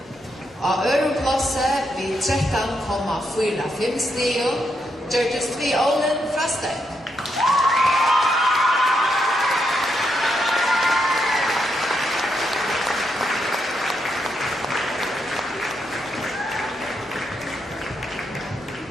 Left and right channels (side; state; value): both; normal; correlation 0.80